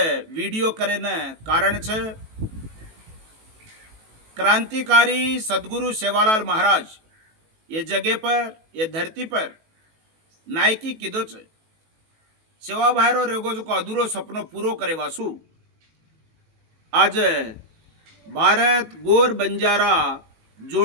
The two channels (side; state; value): left; late; 18 ms